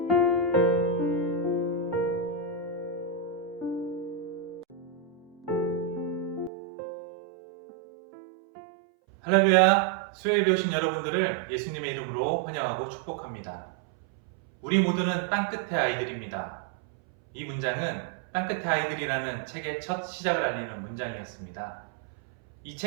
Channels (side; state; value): left; drops out; at 6.5 s